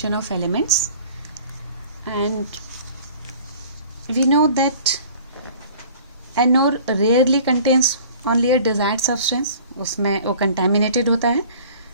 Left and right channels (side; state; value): both; inverted; correlation -0.48